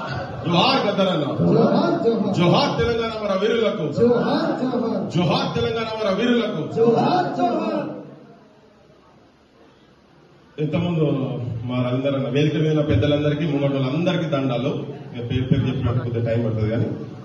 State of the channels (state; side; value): identical; both; correlation 1.00